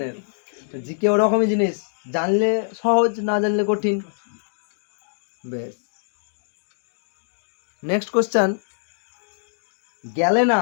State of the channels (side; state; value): right; silent; digital silence